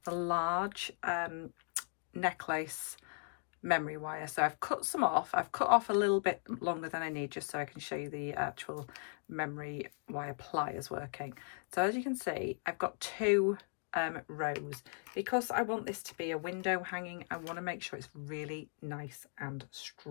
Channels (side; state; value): right; silent; 53 dB below the other